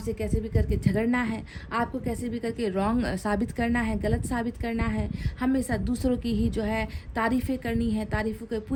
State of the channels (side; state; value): both; identical; correlation 1.00